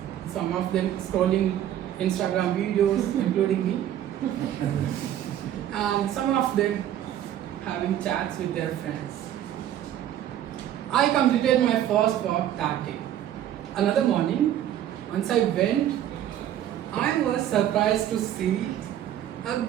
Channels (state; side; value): quieter; left; 11.3 dB